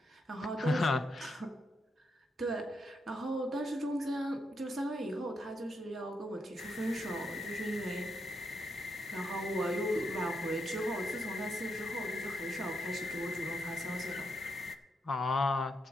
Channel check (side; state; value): both; normal; correlation 0.80